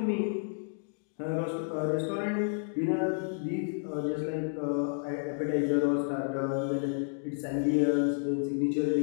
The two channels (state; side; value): silent; right; digital silence